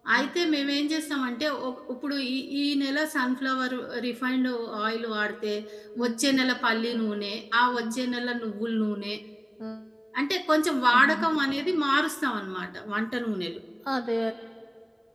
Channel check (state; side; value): identical; both; correlation 1.00